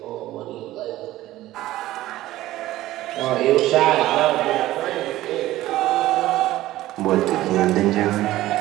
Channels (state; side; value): quieter; left; 15.7 dB